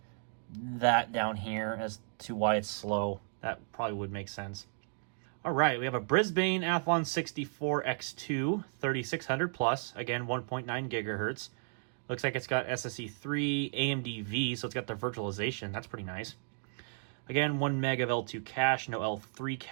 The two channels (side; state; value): left; silent; 55 dB below the other